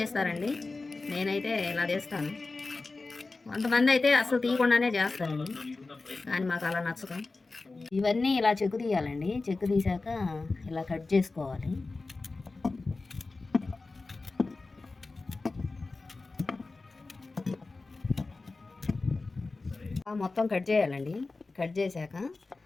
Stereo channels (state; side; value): quieter; right; 3.6 dB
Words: నేనైతే ఇలా చేస్తాను. కొంతమంది అయితే అసలు తీయకుండానే చేస్తారండి, కానీ మాకు అలా నచ్చదు. ఇవన్నీ ఇలా చెక్కు తీయాలండి. చెక్కు తీసాక ఇలా కట్ చేసుకోవాలి. మొత్తం కట్ చేయాలండి. కట్ చేశాక